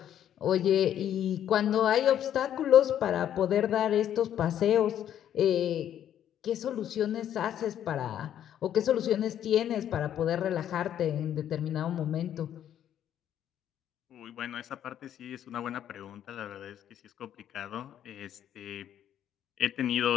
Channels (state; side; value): quieter; right; 10.5 dB